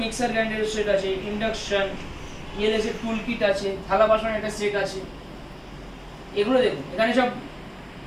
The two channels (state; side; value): identical; both; correlation 1.00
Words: মিক্সার গ্রাইন্ডারের সেট আছে, ইন্ডাকশন, ইএলএস এর টুল কিট আছে, থালা বাসনের একটা সেট আছে। এগুলো দেখুন, এখানে সব